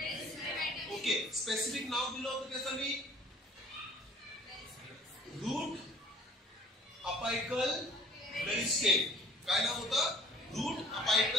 ओके, स्पेसिफिक नाव दिलं होतं त्याचं मी, रूट अपायकल मेरिस्टेम. काय नाव होतं? Route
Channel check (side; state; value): both; normal; correlation 0.52